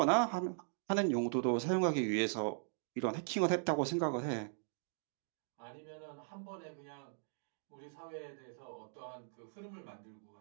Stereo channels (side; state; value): left; silent; digital silence